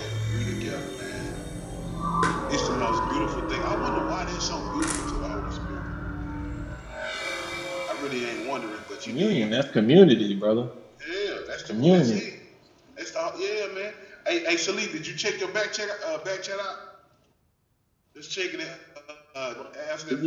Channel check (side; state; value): both; identical; correlation 1.00